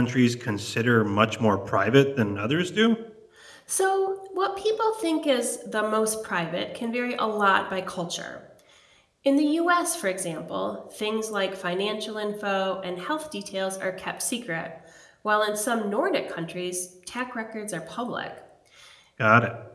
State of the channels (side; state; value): both; identical; correlation 1.00